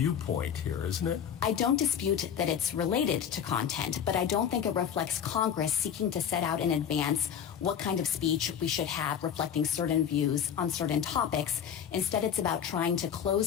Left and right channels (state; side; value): quieter; right; 8.5 dB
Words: here, isn't it? I don't dispute that it's related to content, but I don't think it reflects Congress seeking to set out in advance what kind of speech we should have reflecting certain views on certain topics. Instead, it's about trying to